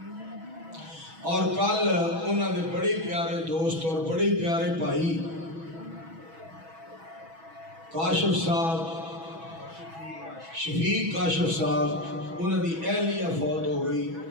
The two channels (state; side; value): late; left; 6.1 ms